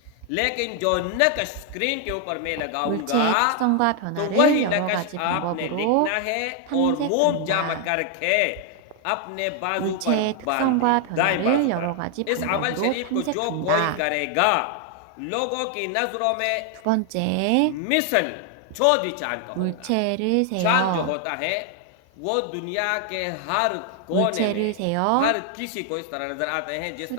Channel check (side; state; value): both; different; correlation 0.00